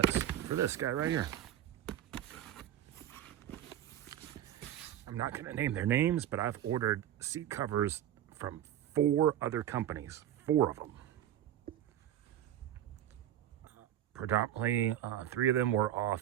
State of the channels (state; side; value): quieter; left; 11.5 dB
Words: for this guy right here. I'm not going to name their names, but I've ordered seat covers from 4 other companies, 4 of them. Predominantly, 3 of them were